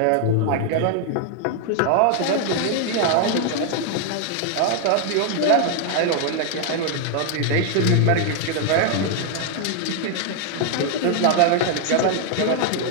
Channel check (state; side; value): different; both; correlation 0.00